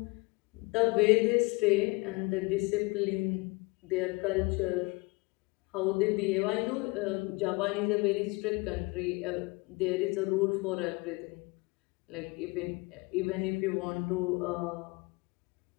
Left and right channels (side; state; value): right; quieter; 26.2 dB